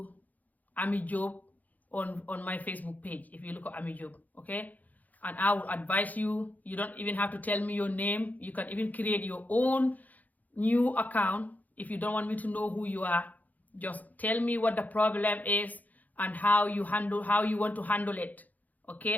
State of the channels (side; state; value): right; late; 0.080 ms